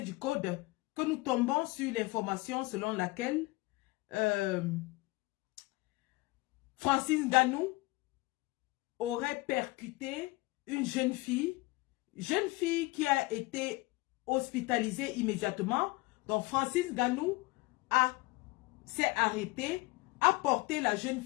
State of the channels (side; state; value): right; quieter; 22.8 dB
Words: du Code, que nous tombons sur l'information selon laquelle Francis Ngannou aurait percuté une jeune fille qui a été hospitalisée immédiatement. Donc Francis Ngannou s'est arrêté, a porté la jeune